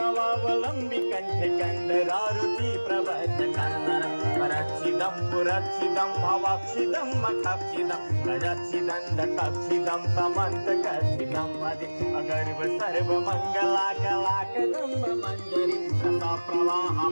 कंठ कंदरारुची प्रबद्ध कंदर परक्षिदं पुरक्षिदं भवाक्षिदं मखाक्षिदं गजाक्षिदं दकाक्षिदं समन्तकक्षिदं वदे अगर्भ सर्व मंगलाकलाकदं मंजरी रसा प्रवाह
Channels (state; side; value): inverted; both; correlation -1.00